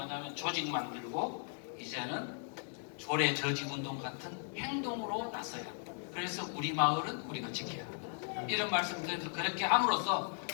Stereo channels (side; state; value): right; silent; 53 dB below the other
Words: 조직 만들고, 이제는 조례 저직 운동 같은 행동으로 나서야 합니다. 그래서 우리 마을은 우리가 지켜야 합니다. 이런 말씀드려서 그렇게 함으로써